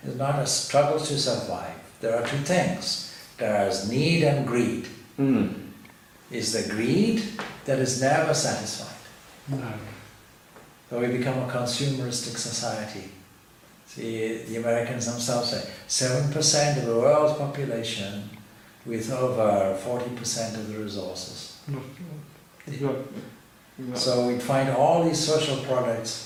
it's not a struggle to survive. There are two things. There is need and greed. Is the greed that is never satisfied. No. So we become a consumeristic society. See, the Americans themselves say 7% of the world's population with over 40% of the resources. Exactly. So we find all these social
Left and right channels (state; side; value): identical; both; correlation 1.00